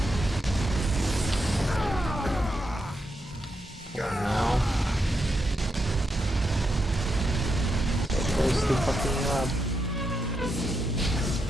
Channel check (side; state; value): both; normal; correlation 0.83